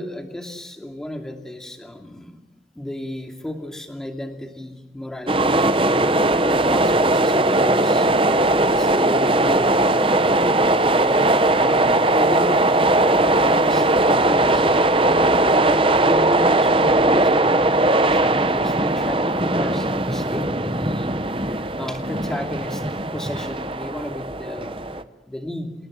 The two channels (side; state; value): both; normal; correlation 0.34